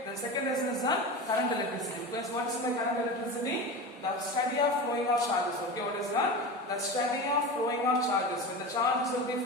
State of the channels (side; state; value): both; normal; correlation 0.27